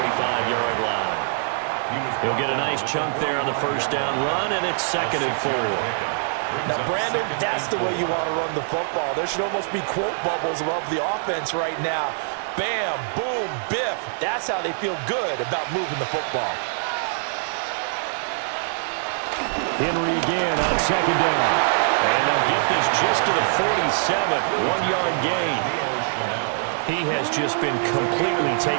line. He'll get a nice chunk there on the first down run, and it's 2nd and 4. Now, Brandon, that's the way you want to run the football. There should almost be quote bubbles above the offense right now. Bam, boom, biff. That's how they feel good about moving the football. Henry again on 2nd down. And they'll get this just to the 47, 1-yard gain. He has just been completely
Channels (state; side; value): silent; left; digital silence